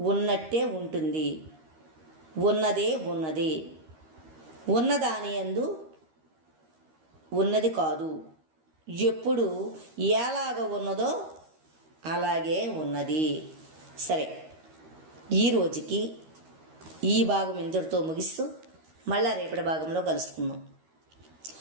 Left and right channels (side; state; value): left; late; 13 ms